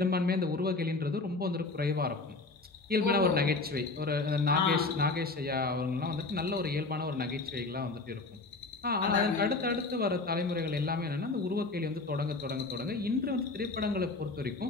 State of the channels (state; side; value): quieter; right; 3.6 dB